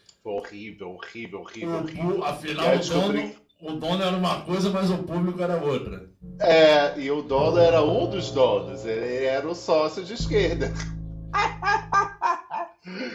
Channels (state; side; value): identical; both; correlation 1.00